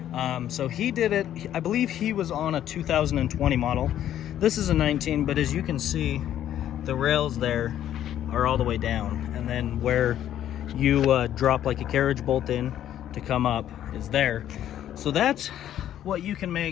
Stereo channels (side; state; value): right; quieter; 11.3 dB